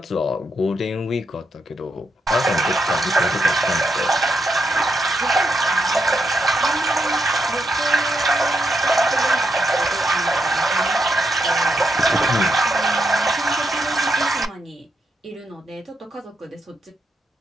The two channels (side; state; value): both; normal; correlation 0.81